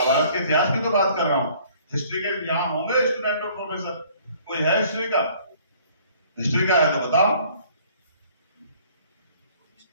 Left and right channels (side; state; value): both; inverted; correlation -0.57